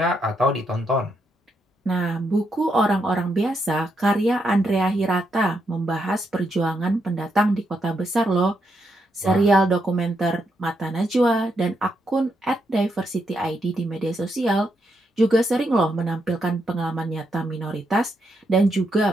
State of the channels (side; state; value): both; normal; correlation 0.80